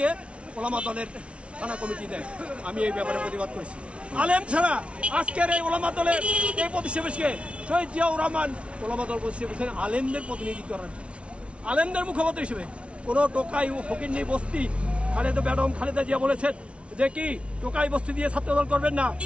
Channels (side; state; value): left; late; 0.060 ms